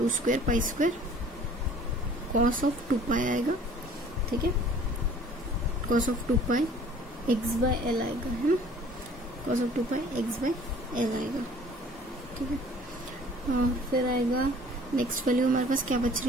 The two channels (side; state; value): both; normal; correlation 0.51